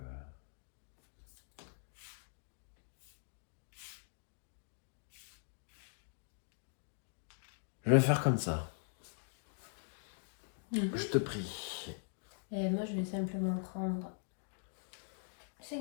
je vais faire comme ça. Je te prie. Et moi, je vais simplement prendre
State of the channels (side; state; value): right; silent; digital silence